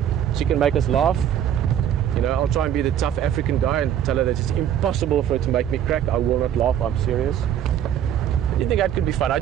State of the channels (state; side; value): quieter; left; 10.0 dB